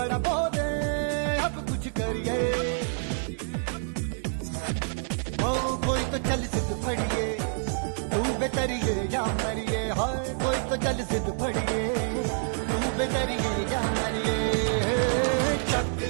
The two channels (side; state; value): left; silent; digital silence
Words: बोले अब कुछ करिए ओ कोई तो चल सिद्ध फड़िए तू बेतरिए या मरिए हाय कोई तो चल सिद्ध फड़िए तू बेतरिए या मरिए चक